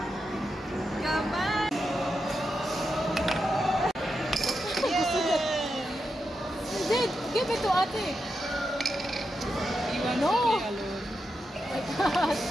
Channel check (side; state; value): both; normal; correlation 0.87